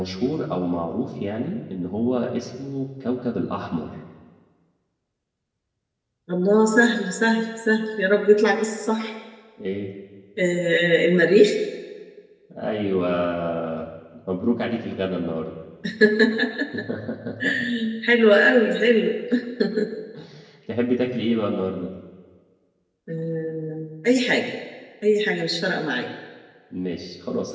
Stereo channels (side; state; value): both; identical; correlation 1.00